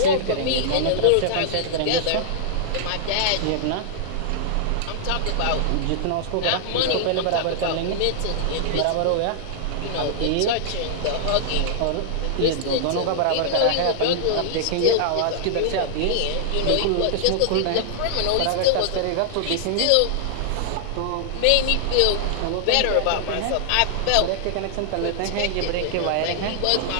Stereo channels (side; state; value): both; different; correlation -0.01